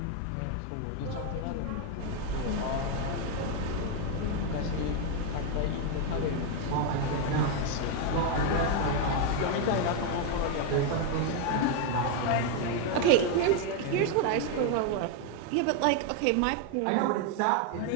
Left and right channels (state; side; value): different; both; correlation 0.01